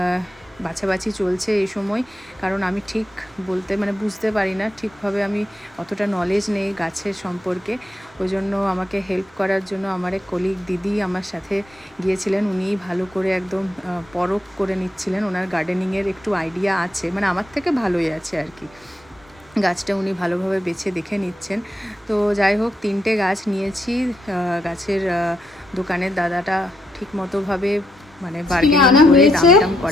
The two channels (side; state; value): both; normal; correlation 0.80